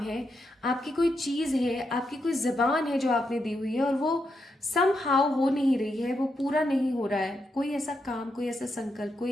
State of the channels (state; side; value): normal; both; correlation 0.83